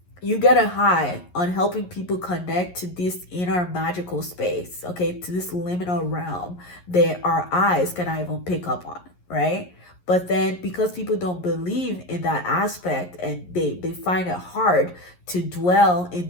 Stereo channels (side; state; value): right; late; 11 ms